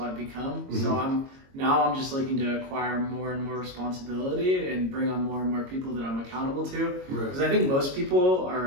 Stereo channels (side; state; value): left; late; 22 ms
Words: I've become. So I'm just looking to acquire more and more responsibility and bring on more and more people that I'm accountable to. Because I think most people